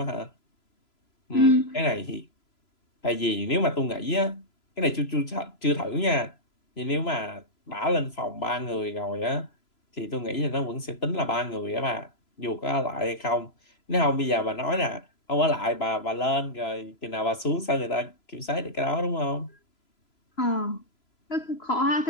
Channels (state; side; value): late; right; 3.0 ms